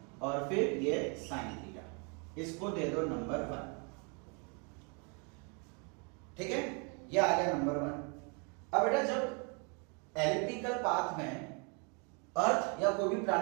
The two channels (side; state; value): left; quieter; 34.9 dB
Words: और फिर ये साइन थीटा, इसको दे दो नंबर 1। ठीक है, ये आ गया नंबर 1। अब बेटा जब एलिप्टिकल पाथ में अर्थ या कोई भी